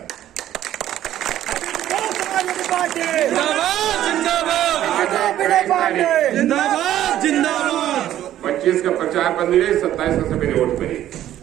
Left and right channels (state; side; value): quieter; left; 12.4 dB